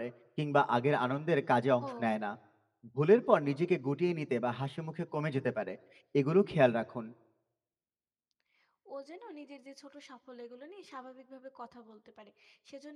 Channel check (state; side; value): identical; both; correlation 1.00